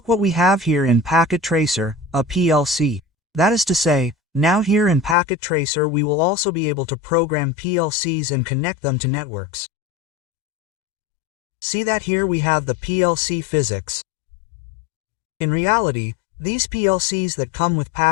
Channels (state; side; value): drops out; right; at 5.2 s